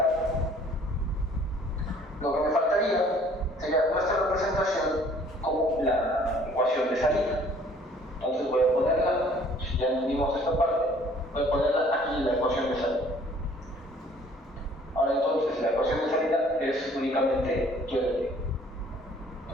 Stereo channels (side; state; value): both; normal; correlation 0.56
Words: Lo que me faltaría sería nuestra representación como la ecuación de salida. Entonces voy a ponerla, si ya entendimos esta parte, voy a ponerla aquí en la ecuación de salida. Ahora entonces la ecuación de salida es únicamente y de t.